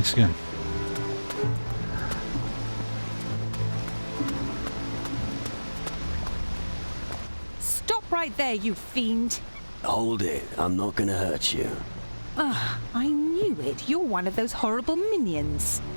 again. Stop right there, you fiend! Hold it. I'm not gonna hurt you. Ah, I knew it. You're one of those horrible minions.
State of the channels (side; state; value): both; inverted; correlation -1.00